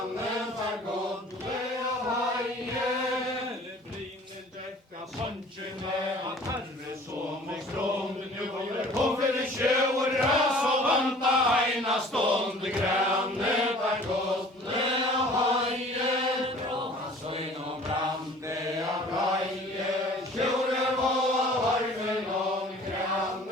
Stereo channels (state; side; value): normal; both; correlation 0.49